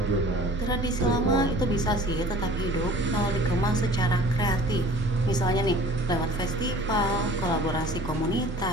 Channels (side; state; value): both; normal; correlation 0.47